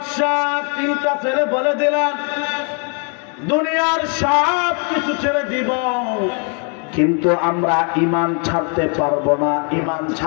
তিনটা ছেলে বলে দিলেন দুনিয়ার সব কিছু ছেড়ে দিব, কিন্তু আমরা ঈমান ছাড়তে পারবো না, ঈমান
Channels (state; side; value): quieter; right; 39.1 dB